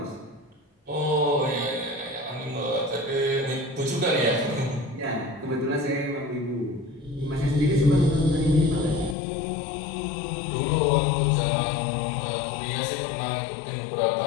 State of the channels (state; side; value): drops out; right; at 9.2 s